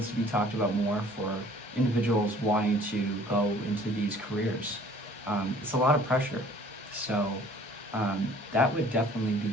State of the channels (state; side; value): normal; both; correlation 0.53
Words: to be talked about more for individuals wanting to go into these careers. It's a lot of pressure. So that would definitely be